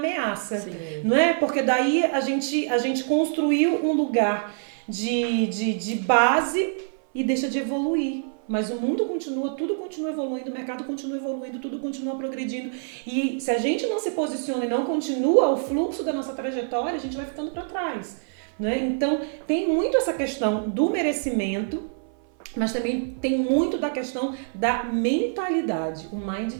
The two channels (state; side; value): silent; left; 59 dB below the other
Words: sim, não é? Porque daí a gente construiu um lugar de base e deixa de evoluir. Mas o mundo continua, tudo continua evoluindo, o mercado continua evoluindo, tudo continua progredindo. E se a gente não se posiciona e não continua o fluxo da nossa trajetória, a gente vai ficando para trás, né? Então, tem muito essa questão do merecimento, mas também tem muito da questão da mentalidade, o mind